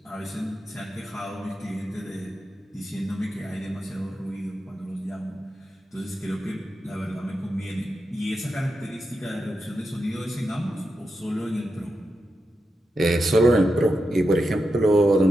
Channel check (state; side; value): normal; both; correlation 0.88